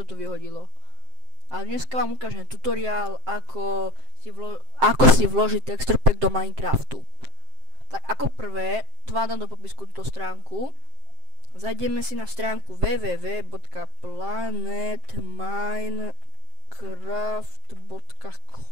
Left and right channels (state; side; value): late; left; 7.6 ms